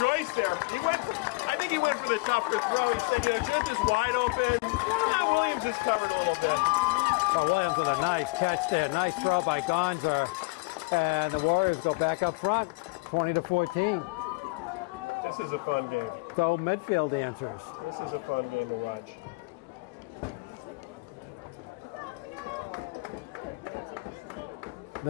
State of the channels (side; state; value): right; quieter; 27.8 dB